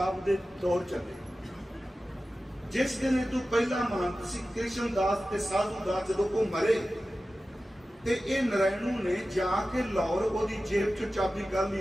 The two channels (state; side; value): normal; both; correlation 0.95